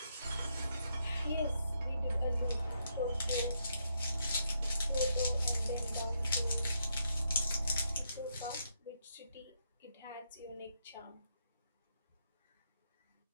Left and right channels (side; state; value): both; inverted; correlation -0.78